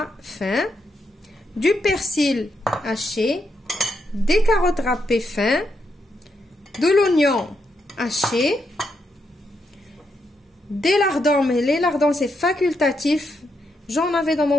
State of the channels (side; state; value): both; normal; correlation 0.81